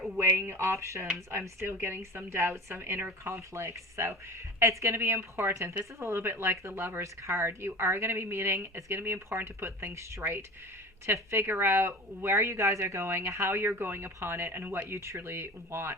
weighing options. I'm still getting some doubts, some inner conflicts. So it's going to be important. This is a little bit like the Lover's card. You are going to be meeting. It's going to be important to put things straight, to figure out where you guys are going, how you're going upon it, and what you truly want.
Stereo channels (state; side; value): normal; both; correlation 0.34